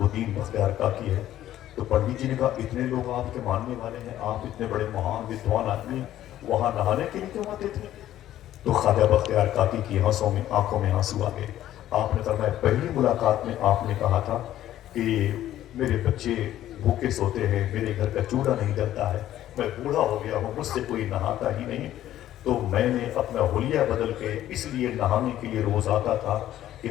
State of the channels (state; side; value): quieter; right; 12.8 dB